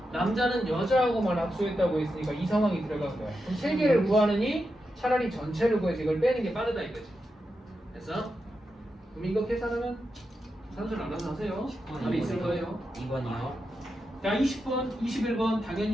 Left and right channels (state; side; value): normal; both; correlation 0.88